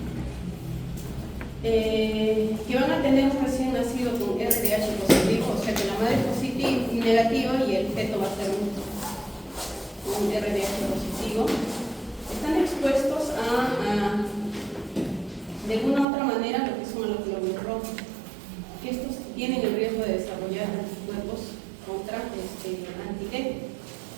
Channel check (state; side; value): drops out; left; at 16.1 s